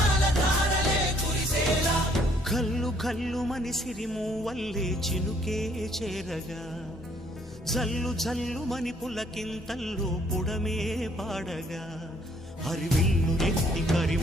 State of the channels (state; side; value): normal; both; correlation 0.64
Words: కల్లు కల్లు మని సిరిమూవల్లే చినుకే చేరగా, జల్లు జల్లు మని పులకింతల్లో పుడమే పాడగా, హరివిల్లు ఎత్తి